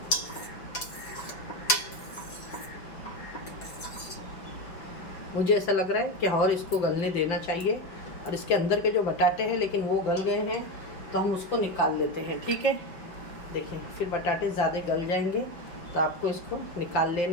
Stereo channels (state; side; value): late; right; 5.6 ms